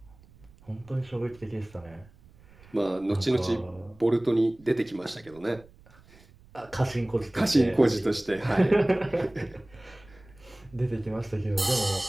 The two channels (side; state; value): right; noise; rumble, 25 dB below the sound